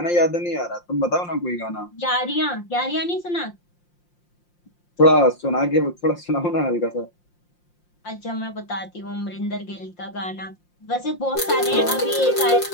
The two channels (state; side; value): late; right; 5.7 ms